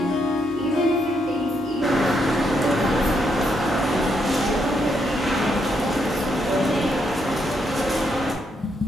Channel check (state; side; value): normal; both; correlation 0.77